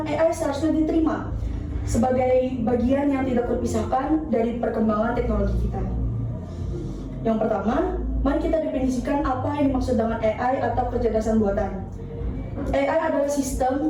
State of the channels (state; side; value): identical; both; correlation 1.00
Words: AI seharusnya diterima sebagai bagian yang tidak terpisahkan dari perkembangan teknologi kita. Yang pertama, mari kita definisikan apa yang dimaksud dengan AI atau kecerdasan buatan. AI adalah